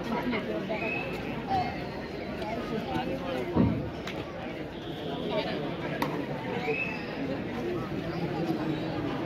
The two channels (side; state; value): both; identical; correlation 1.00